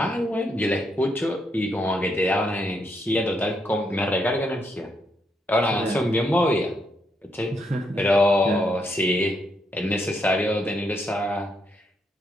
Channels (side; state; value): both; normal; correlation 0.77